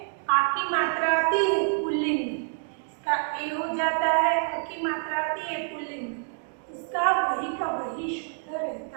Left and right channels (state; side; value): silent; left; 60 dB below the other